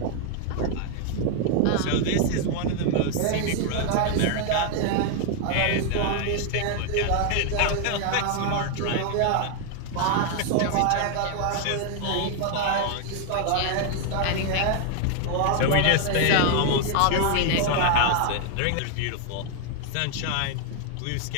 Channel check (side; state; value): both; different; correlation 0.00